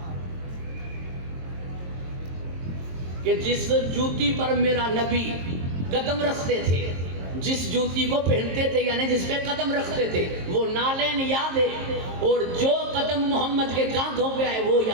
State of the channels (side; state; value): left; late; 22 ms